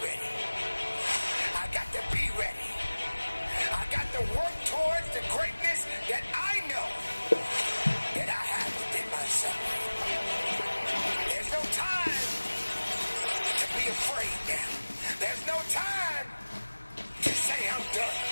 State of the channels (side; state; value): both; inverted; correlation -1.00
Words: I got to be ready. I got to work towards the greatness that I know that I have within myself. There's no time to be afraid now. There's no time to say I'm done.